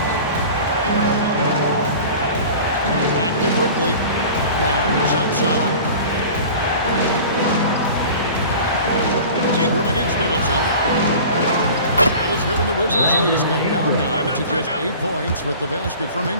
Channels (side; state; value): both; inverted; correlation -0.40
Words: Back to quickly. Barnes outside. Ingram against Middleton. That is good, and the Wizards' lead is cut down now to just 8 points with the basket from